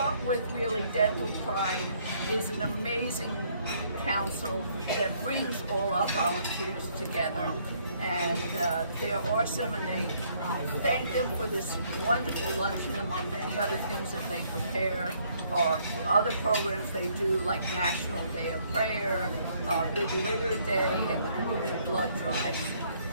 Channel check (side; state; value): both; inverted; correlation -0.66